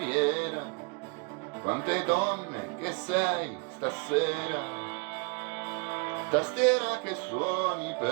quante donne che sei stasera, tastiera che suoni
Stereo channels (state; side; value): quieter; left; 32.9 dB